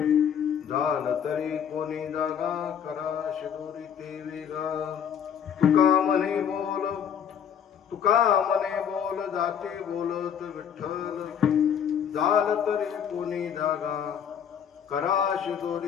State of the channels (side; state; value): right; quieter; 8.3 dB